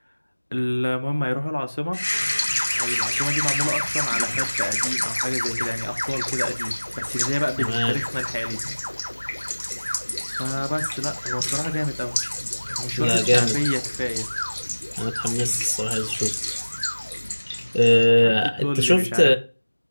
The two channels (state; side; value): inverted; both; correlation -1.00